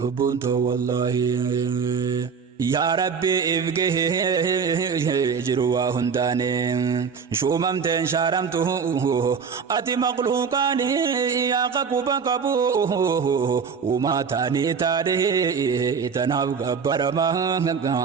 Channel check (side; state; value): left; quieter; 6.0 dB